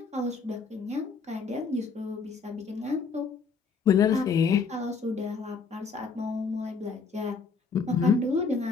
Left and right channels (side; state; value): right; quieter; 5.1 dB